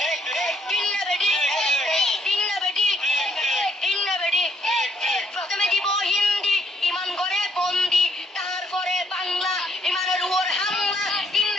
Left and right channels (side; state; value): both; normal; correlation 0.69